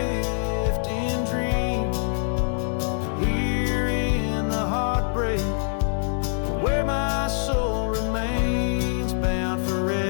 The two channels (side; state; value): right; silent; digital silence